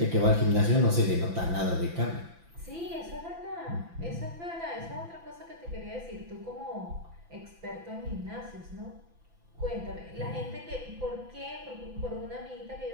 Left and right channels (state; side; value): late; left; 5.9 ms